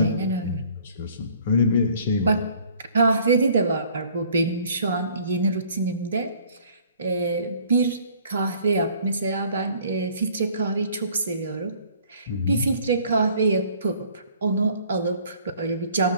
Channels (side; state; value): both; inverted; correlation -0.56